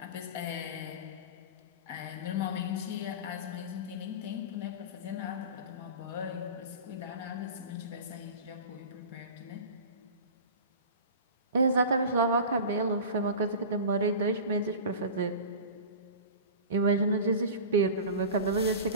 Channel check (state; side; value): inverted; both; correlation -0.33